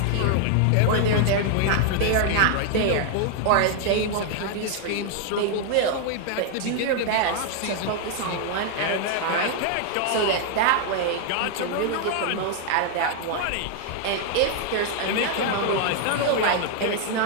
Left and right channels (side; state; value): both; different; correlation 0.00